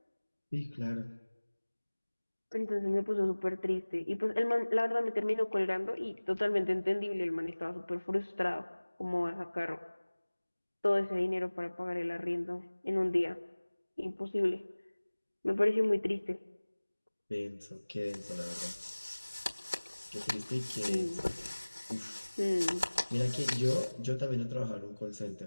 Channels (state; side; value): inverted; both; correlation -1.00